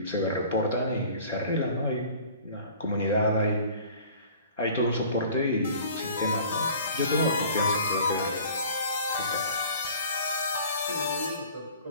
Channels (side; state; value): both; inverted; correlation -0.47